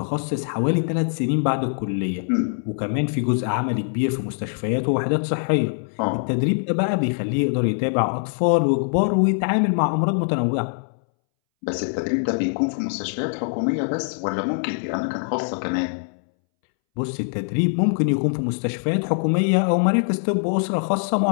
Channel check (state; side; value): silent; right; 63 dB below the other